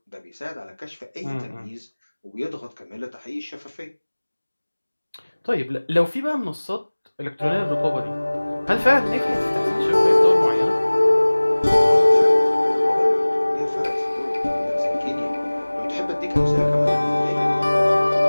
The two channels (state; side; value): inverted; both; correlation -1.00